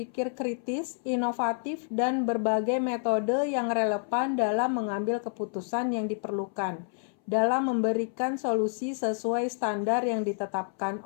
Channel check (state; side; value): silent; right; 59 dB below the other